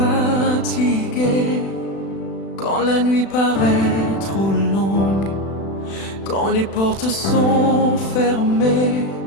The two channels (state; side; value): late; right; 36 ms